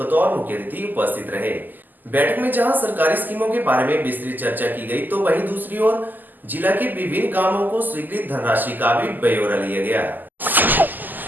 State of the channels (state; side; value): late; left; 0.086 ms